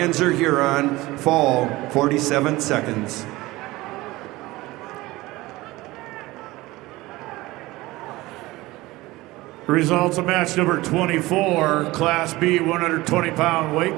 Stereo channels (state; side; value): quieter; left; 19.5 dB